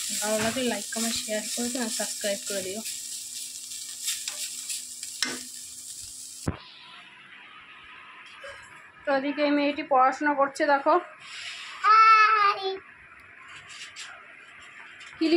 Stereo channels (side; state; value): both; identical; correlation 1.00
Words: ভালো লাগলে লাইক কমেন্ট শেয়ার করে দিও আর সাবস্ক্রাইব করে দিও। তো এদিকে এই মেয়েটি পড়াশোনা করছে, দেখো কি